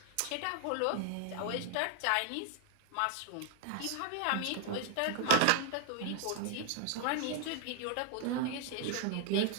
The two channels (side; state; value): both; different; correlation 0.00